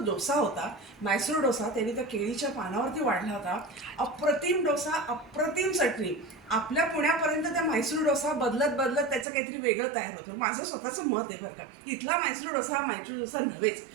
डोसा होता, म्हैसूर डोसा, त्यांनी त्या केळीच्या पानावरती वाढला होता. अप्रतिम डोसा, अप्रतिम चटणी. आपल्या पुण्यापर्यंत त्या म्हैसूर डोसा बदलत बदलत त्याचं काहीतरी वेगळं तयार होतं. माझं स्वतःचं मत आहे बरं का. इथला म्हैसूर डोसा हा म्हैसूर डोसा नव्हेच.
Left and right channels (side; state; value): left; drops out; at 9.2 s